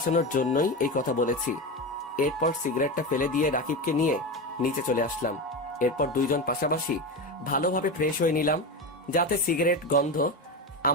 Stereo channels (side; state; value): both; normal; correlation 0.20